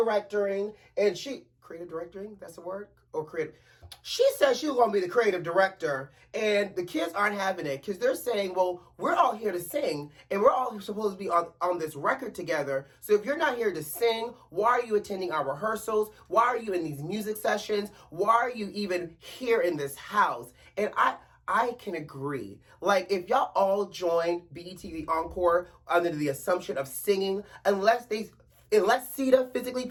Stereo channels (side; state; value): both; identical; correlation 1.00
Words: and creative directing? That's a word? Or creative? She said she was going to be the creative director, and the kids aren't having it because they're saying, well, we're all here to sing, and we're all supposed to be on this record together. So if you're not here to sing, why are you attending our rehearsals? Why are you in these music sessions? Why are you even here in this house? And I can agree. Like, if y'all all joined BET the Encore under the assumption of singing, unless Sita physically